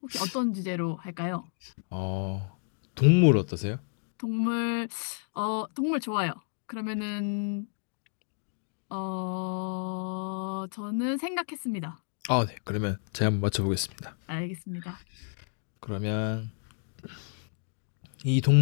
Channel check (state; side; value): silent; right; digital silence